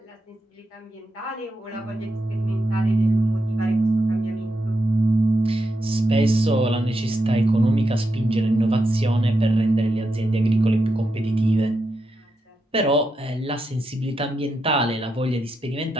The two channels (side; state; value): both; normal; correlation 0.85